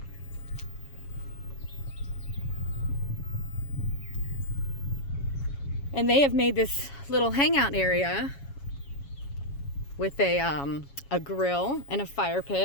And they have made this little hangout area with a grill and a fire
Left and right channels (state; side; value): late; right; 7.2 ms